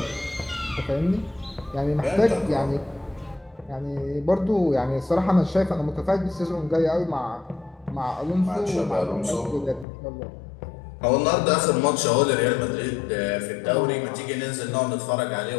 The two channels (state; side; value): drops out; right; at 9.9 s